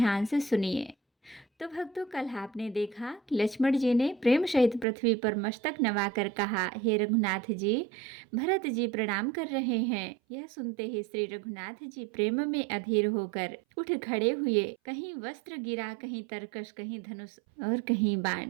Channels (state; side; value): drops out; left; at 4.9 s